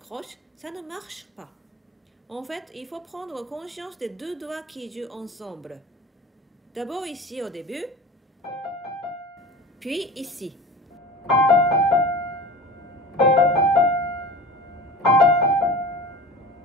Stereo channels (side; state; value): both; normal; correlation 0.35